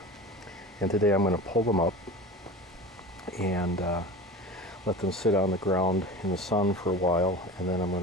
And today I'm going to pull them up and let them sit on the ground in the sun for a while, and then I'm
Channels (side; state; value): both; normal; correlation 0.33